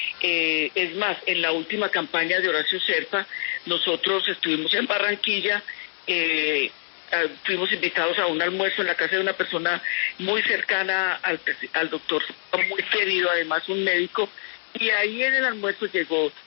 Es más, en la última campaña de Horacio Serpa, nosotros estuvimos en Barranquilla, fuimos invitados a un almuerzo en la casa de una persona muy cercana al doctor, muy querido, además un médico, y ahí en el almuerzo llegó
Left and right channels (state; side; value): silent; right; digital silence